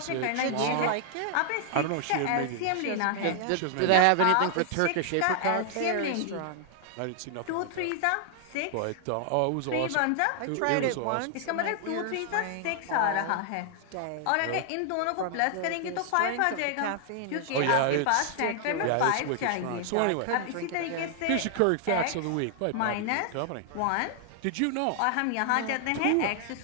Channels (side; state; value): both; different; correlation 0.00